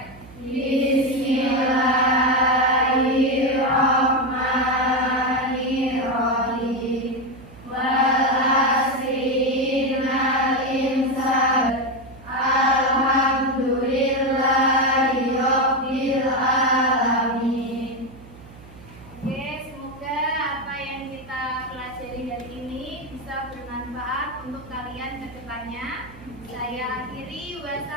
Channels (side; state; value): right; noise; hum, 20 dB below the sound